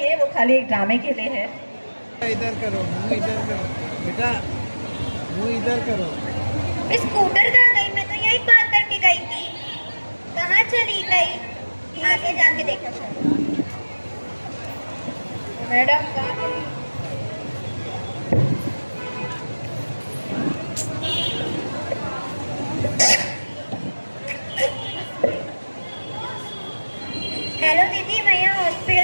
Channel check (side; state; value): both; inverted; correlation -1.00